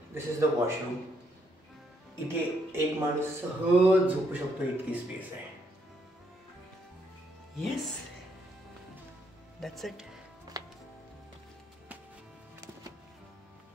this is the washroom. इथे एक माणूस सहज झोपू शकतो इतकी स्पेस आहे. Yes, that's it.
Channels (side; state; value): both; normal; correlation 0.73